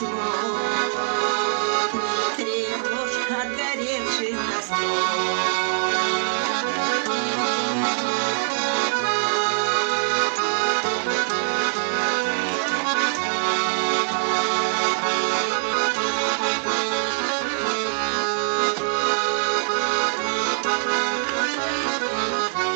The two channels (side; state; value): left; silent; 63 dB below the other